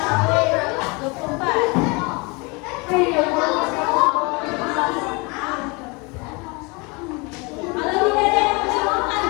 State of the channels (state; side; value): quieter; right; 28.5 dB